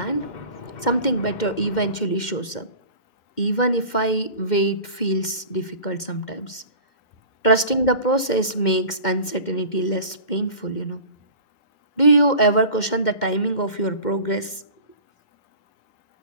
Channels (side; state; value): right; late; 2.1 ms